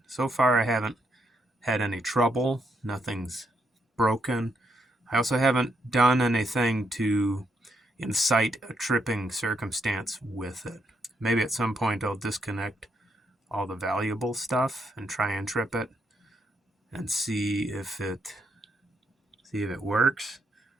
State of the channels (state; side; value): normal; both; correlation 0.77